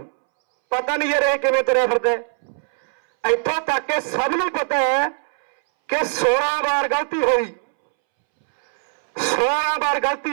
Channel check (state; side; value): silent; left; 64 dB below the other